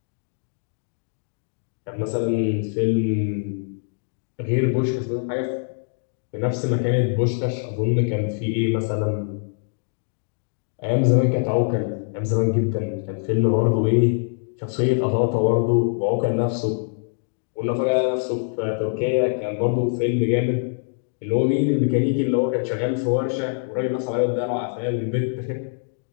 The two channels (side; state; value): right; silent; 63 dB below the other